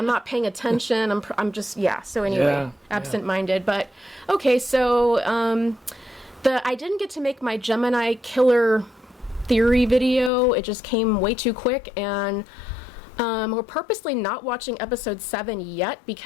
not paying attention. I'm just, so anyway, absent-minded. But, okay, so, I didn't get to make my Gemini killer theory video. It just came way too quick, and, we're purposely not watching episode 7 yet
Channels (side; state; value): right; drops out; at 10.3 s